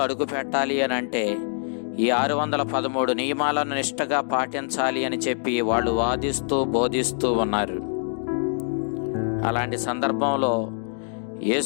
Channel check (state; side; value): silent; right; digital silence